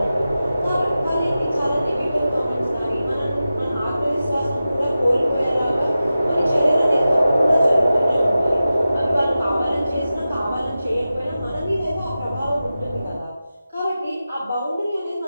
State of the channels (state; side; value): inverted; both; correlation -0.93